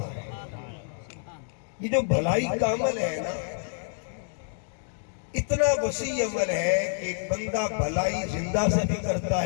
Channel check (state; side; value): silent; right; digital silence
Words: ہے۔ یہ جو بھلائی کا عمل ہے نا، اتنا وسیع عمل ہے کہ ایک بندہ بھلائی زندہ سے بھی کرتا